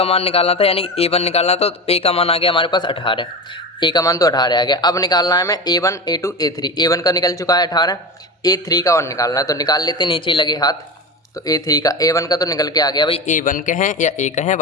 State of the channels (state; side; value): normal; both; correlation 0.24